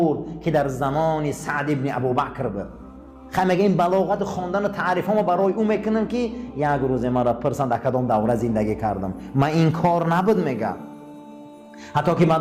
که در زمان سعد ابن ابوبکر بود. مگه این بلاغت خواندن و تعریف ها ما برای او میکنم که یک روز مرا پرسن در کدام دوره زندگی کردم. من این کار نبود میگم. حتی که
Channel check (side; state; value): both; identical; correlation 1.00